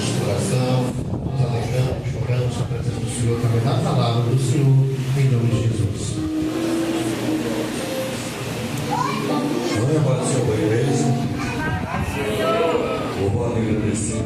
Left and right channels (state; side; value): identical; both; correlation 1.00